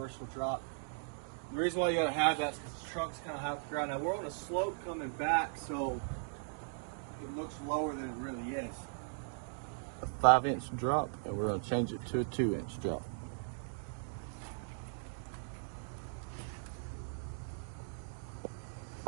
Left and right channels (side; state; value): left; silent; digital silence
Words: drop. The reason why you got to have that is because the truck's kind of high off the ground. Now we're on a slope coming back, so it looks lower than it really is. A 5-inch drop, and we're going to change it to a 2-inch drop.